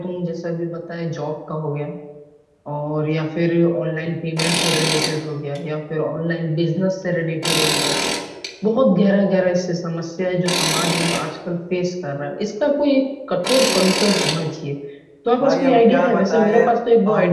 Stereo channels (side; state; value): both; identical; correlation 1.00